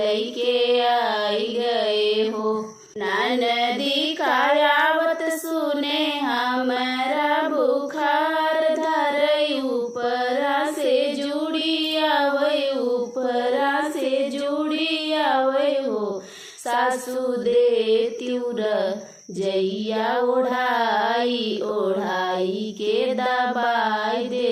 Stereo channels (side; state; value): both; identical; correlation 1.00